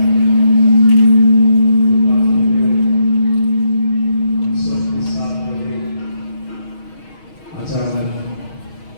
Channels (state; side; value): late; right; 6.3 ms